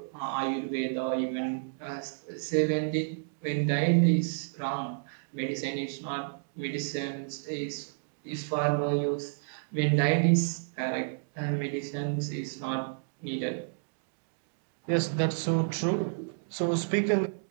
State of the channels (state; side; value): silent; left; digital silence